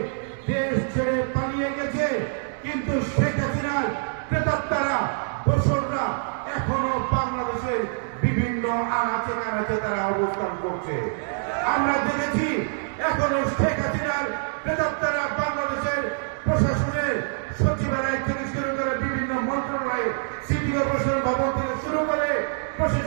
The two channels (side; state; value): left; silent; 62 dB below the other